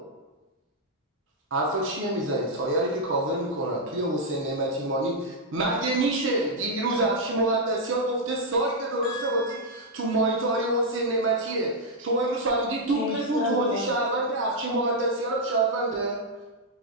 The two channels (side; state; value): both; normal; correlation -0.04